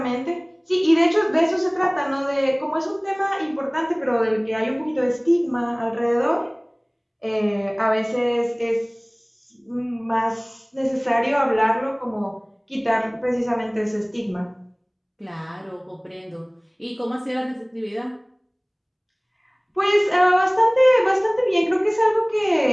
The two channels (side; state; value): both; identical; correlation 1.00